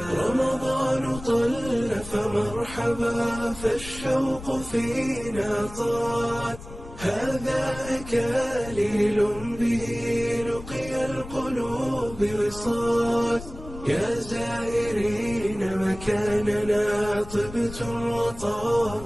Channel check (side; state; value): left; noise; rumble, 14 dB below the sound